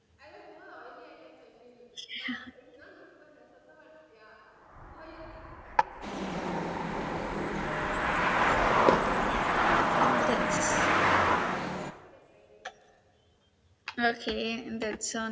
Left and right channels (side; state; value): both; identical; correlation 1.00